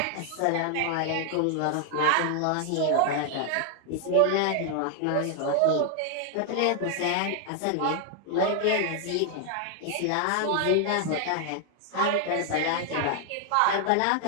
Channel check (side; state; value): both; different; correlation 0.00